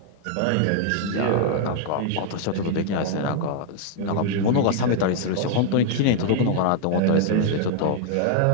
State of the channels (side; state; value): both; different; correlation 0.00